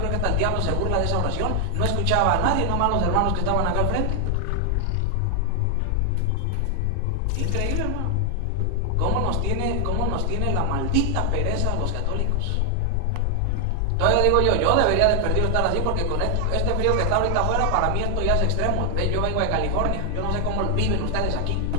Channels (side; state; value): both; different; correlation 0.00